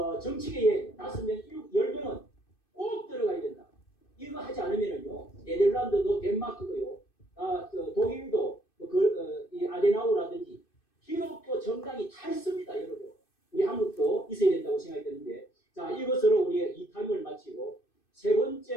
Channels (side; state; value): right; late; 2.6 ms